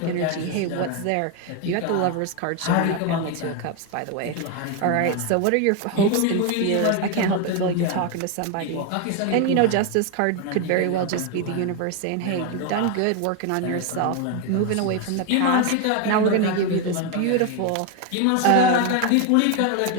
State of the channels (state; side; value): different; both; correlation 0.01